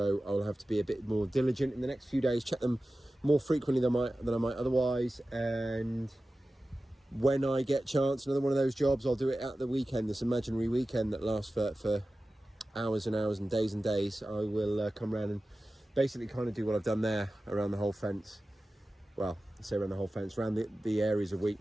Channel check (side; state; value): both; normal; correlation 0.95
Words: I'll have to be a bit more diligent in the next few days, check them more frequently than I might otherwise. And when I get chance, another one of those jobs, I'll do it at the weekend, this imaginary weekend that lasts for hours and hours and days. I will come around and basically kind of do what I've done there around the whole fence. Well, I say around the whole fence, around the areas of